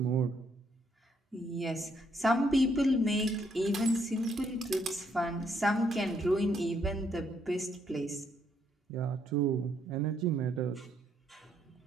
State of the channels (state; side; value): normal; both; correlation 0.72